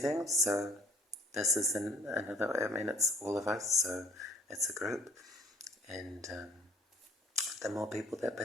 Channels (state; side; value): normal; both; correlation 0.56